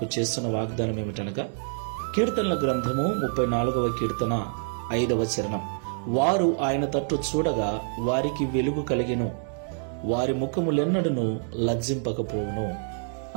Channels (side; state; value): left; silent; digital silence